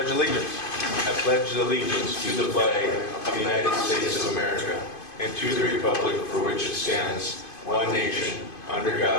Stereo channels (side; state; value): right; late; 2.5 ms